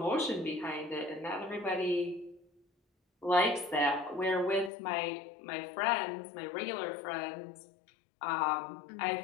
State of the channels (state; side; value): drops out; right; at 4.7 s